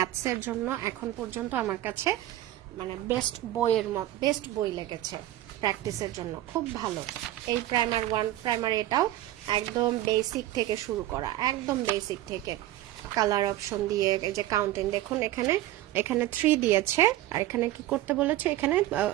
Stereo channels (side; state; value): left; quieter; 14.6 dB